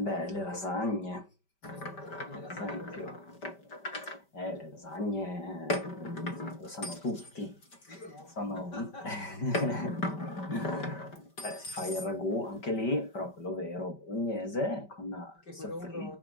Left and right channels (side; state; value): right; late; 5.1 ms